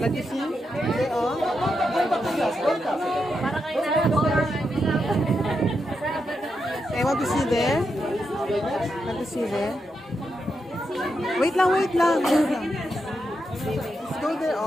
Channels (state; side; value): normal; both; correlation 0.84